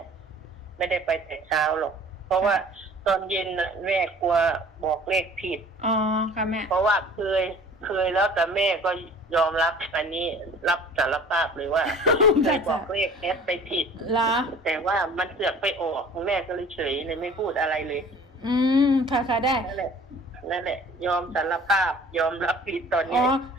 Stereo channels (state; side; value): normal; both; correlation 0.48